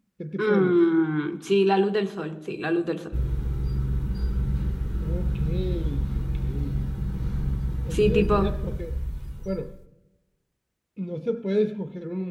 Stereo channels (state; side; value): identical; both; correlation 1.00